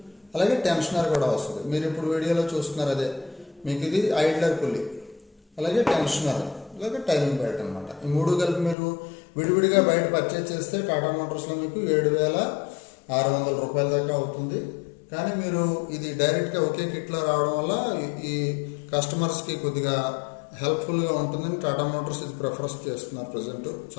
అలాగే టెన్షనర్ కూడా వస్తుంది. మీరు ఇప్పుడు వీడియోలో చూస్తున్నారు అదే మీకు ఇది ఐడ్లర్ పుల్లీ, అలాగే టెన్షనర్, అలాగే టైమింగ్ బెల్ట్ అనమాట. ఈ మూడు కలిపి మీరు విడివిడిగా బయట పర్చేజ్ చేస్తే టాటా మోటార్స్లో మీకు 7,600 రూపాయల దాకా అవుతుంది. కానీ మీరు ఇది డైరెక్ట్గా ఒకే కిట్లో రావడం వల్ల ఈ కస్టమర్స్కి కొద్దిగా హెల్ప్ఫుల్గా ఉంటుందని టాటా మోటార్స్ ఇది ప్రిఫరెన్స్ చేస్తున్నారు. ప్రజెంట్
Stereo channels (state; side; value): drops out; right; at 8.8 s